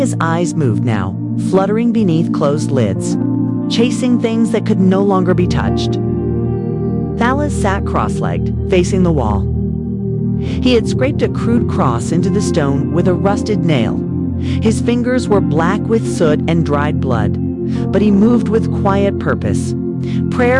eyes moved now, fluttering beneath closed lids, chasing things that could no longer be touched. Thalas sat cross-legged, facing the wall. He had scraped a crude cross into the stone with a rusted nail. His fingers were black with soot and dried blood, but he moved with quiet purpose.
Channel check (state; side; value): identical; both; correlation 1.00